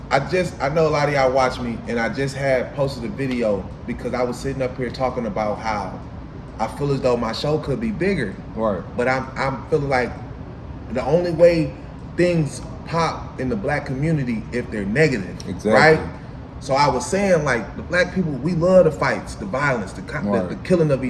know a lot of y'all watch me, and I just had posted a video because I was sitting up here talking about how I feel as though my show could be bigger. Right. But I'm feeling like the only way things pop in the black community if they're negative. Exactly. Right? So I was saying, like, the black people, we love the fights, the violence, the killing of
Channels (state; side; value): identical; both; correlation 1.00